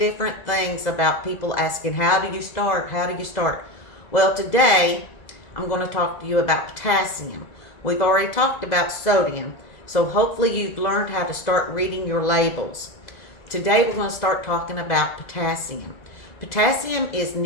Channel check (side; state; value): right; late; 2.0 ms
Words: things about people asking, how do you start? How do you start? Well, today I'm going to talk to you about potassium. We've already talked about sodium, so hopefully you've learned how to start reading your labels. Today we're going to start talking about potassium. Potassium is